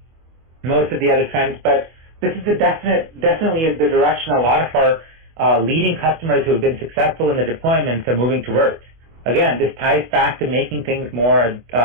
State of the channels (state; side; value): late; left; 25 ms